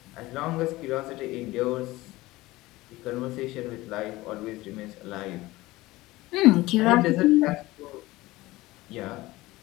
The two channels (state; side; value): quieter; right; 19.0 dB